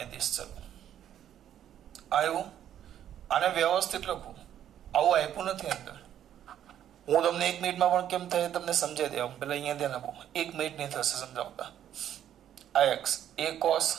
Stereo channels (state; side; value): quieter; left; 10.6 dB